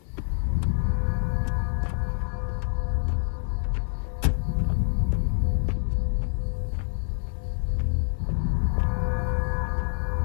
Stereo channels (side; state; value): right; silent; 60 dB below the other